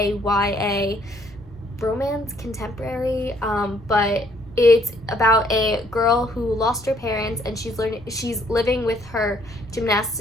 YA romance contemporary, but it's about a girl who lost her parents, and she's living with her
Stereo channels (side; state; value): both; normal; correlation 0.65